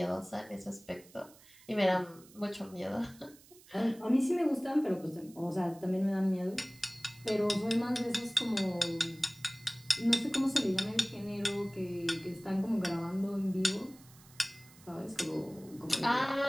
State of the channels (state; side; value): noise; right; hiss, 24 dB below the sound